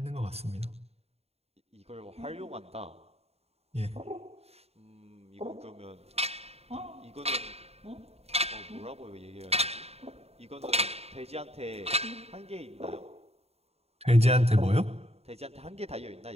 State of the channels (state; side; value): late; left; 0.30 ms